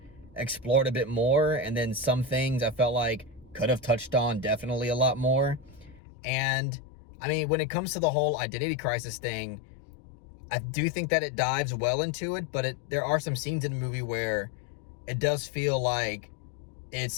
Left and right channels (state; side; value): drops out; right; at 6.0 s